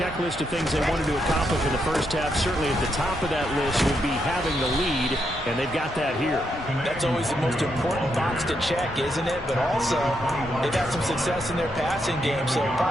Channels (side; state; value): both; normal; correlation 0.80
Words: of things they wanted to accomplish in the first half, certainly at the top of that list would be having the lead, and they've got that here. That's always the most important box to check, isn't it? But also, they've had some success in their passing game, so